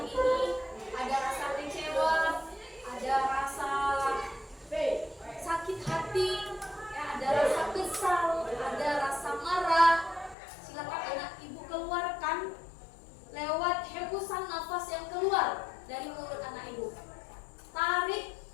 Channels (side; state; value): right; drops out; at 10.4 s